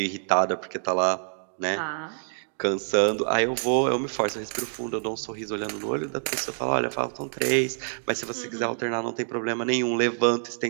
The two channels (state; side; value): silent; left; digital silence